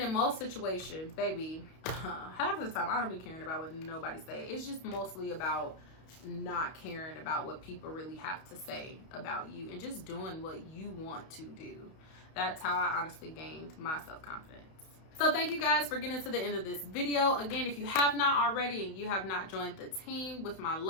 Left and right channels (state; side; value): late; right; 31 ms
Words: in most situations, baby, half of the time I don't be caring about what nobody say. It's just mostly about not caring about what people really have to say about you and just doing what you want to do. That's how I honestly gained my self-confidence. So thank you guys for getting to the end of this video. Again, if you have not already and you have not joined the team with my